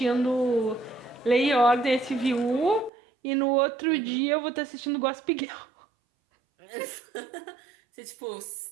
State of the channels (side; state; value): left; drops out; at 2.9 s